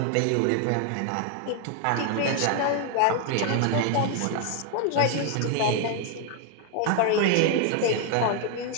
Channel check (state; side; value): different; both; correlation 0.00